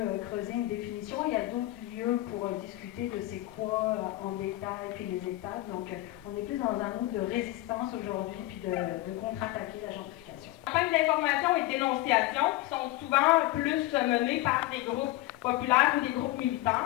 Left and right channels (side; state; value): right; quieter; 17.5 dB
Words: creuser une définition. Il y a d'autres lieux pour discuter de c'est quoi en détail, puis les étapes. Donc on est plus dans un mood de résistance aujourd'hui, puis de contre-attaquer la gentrification. Les campagnes d'information et de dénonciation qui sont souvent plus menées par des groupes populaires ou des groupes